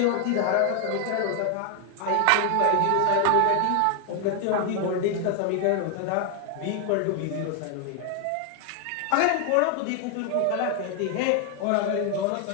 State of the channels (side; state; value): both; different; correlation 0.00